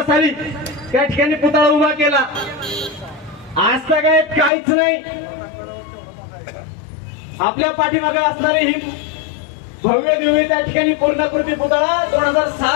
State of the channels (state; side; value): drops out; right; at 4.5 s